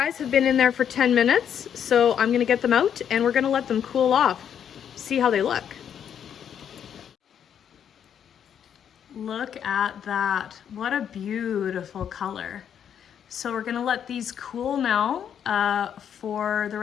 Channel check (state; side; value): quieter; right; 8.7 dB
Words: have been in there for 10 minutes, so I'm gonna get them out and we're gonna let them cool off. See how they look. Look at that. What a beautiful color. So we're gonna let these cool now for the